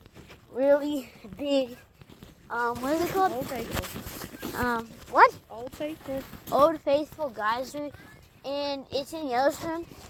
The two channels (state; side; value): identical; both; correlation 1.00